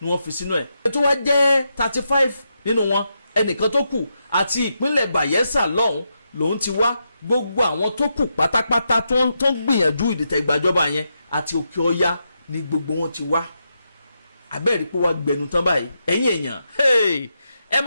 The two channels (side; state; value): both; inverted; correlation -0.84